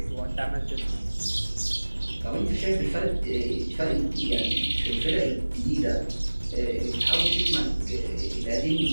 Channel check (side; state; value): both; inverted; correlation -1.00